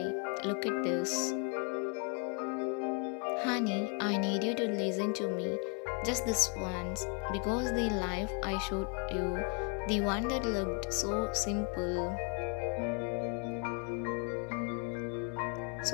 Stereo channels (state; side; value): quieter; right; 35.6 dB